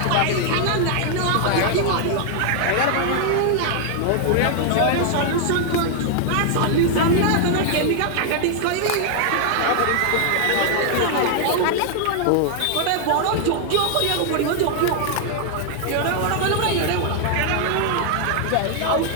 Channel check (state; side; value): different; both; correlation 0.00